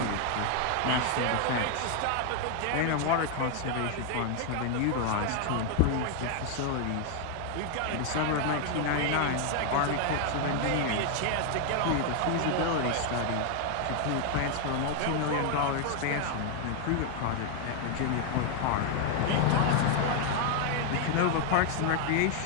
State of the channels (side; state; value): both; different; correlation 0.00